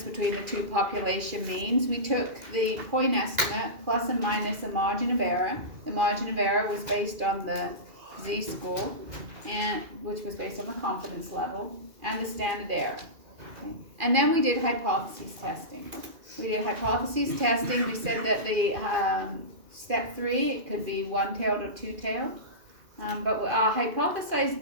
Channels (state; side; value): late; left; 2.4 ms